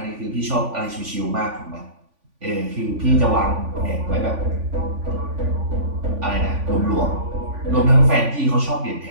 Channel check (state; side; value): late; left; 3.5 ms